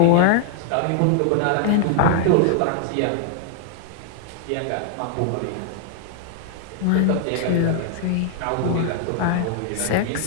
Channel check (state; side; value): different; both; correlation -0.01